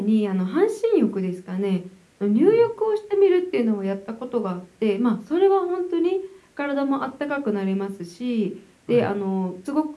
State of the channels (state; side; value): identical; both; correlation 1.00